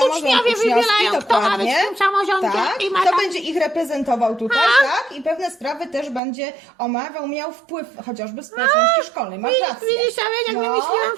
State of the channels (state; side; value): drops out; left; at 6.2 s